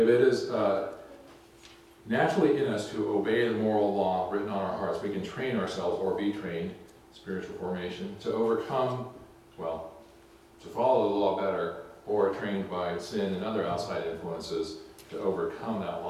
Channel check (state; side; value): identical; both; correlation 1.00